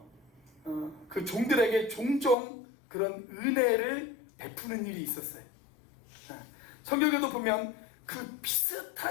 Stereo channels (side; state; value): right; drops out; at 2.4 s